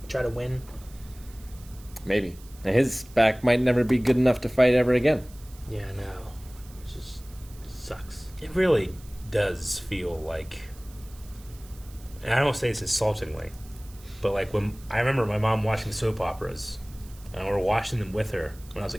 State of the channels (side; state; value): right; noise; hiss, 23 dB below the sound